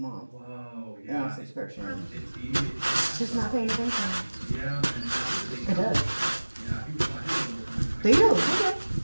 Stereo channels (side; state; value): both; inverted; correlation -1.00